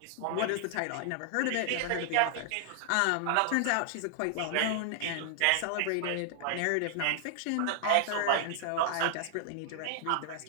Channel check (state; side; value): different; both; correlation 0.00